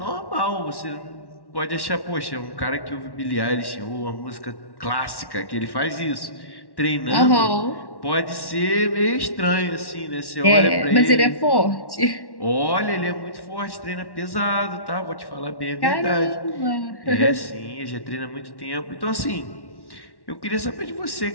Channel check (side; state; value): right; late; 1.1 ms